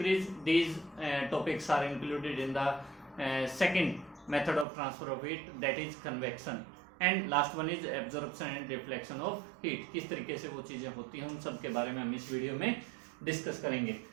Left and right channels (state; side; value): drops out; left; at 4.7 s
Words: these topics are included in the second method of transfer of heat, that is convection. And last one is absorption and reflection of heat. किस तरीके से वो चीजें होती हैं उन सब के बारे में हम इस वीडियो में डिस्कस करेंगे।